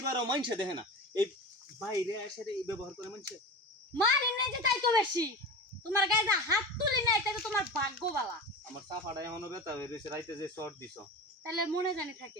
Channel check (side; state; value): both; normal; correlation 0.29